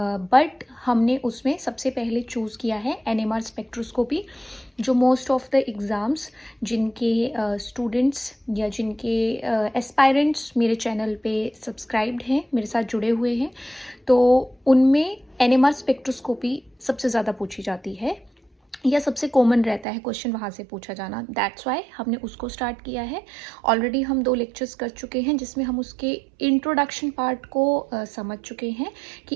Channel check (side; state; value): left; drops out; at 19.9 s